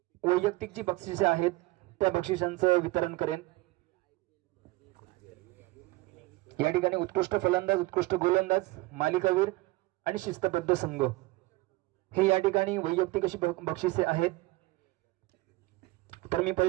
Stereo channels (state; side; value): quieter; left; 20.9 dB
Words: वैयक्तिक जी बक्षिसे आहेत त्या बक्षिसांचं वितरण करेन. या ठिकाणी उत्कृष्ट फलंदाज, उत्कृष्ट गोलंदाज, मालिकावीर आणि शिस्तबद्ध संघ हे या ठिकाणी वैयक्तिक अशी बक्षिसे आहेत. तर मी